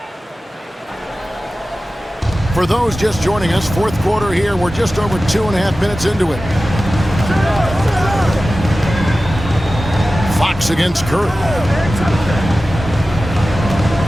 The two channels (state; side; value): normal; both; correlation 0.95